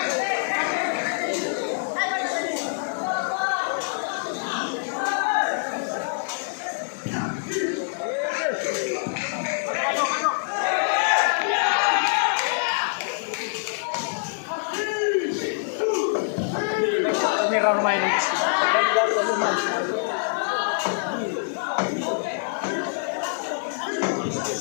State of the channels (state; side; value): silent; right; 62 dB below the other